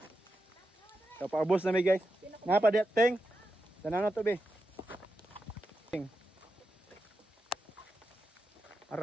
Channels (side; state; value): both; normal; correlation 0.88